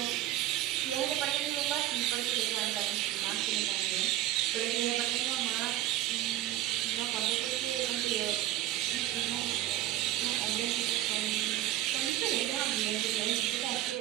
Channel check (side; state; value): left; quieter; 14.1 dB